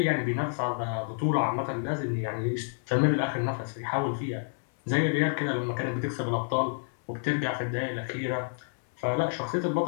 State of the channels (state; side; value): silent; right; 57 dB below the other